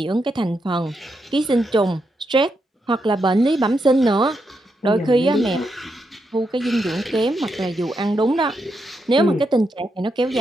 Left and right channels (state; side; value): normal; both; correlation 0.82